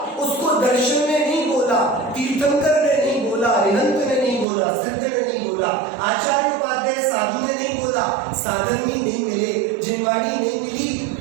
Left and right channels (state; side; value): drops out; left; at 4.5 s